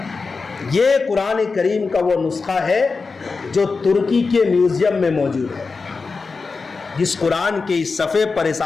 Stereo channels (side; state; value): right; quieter; 4.4 dB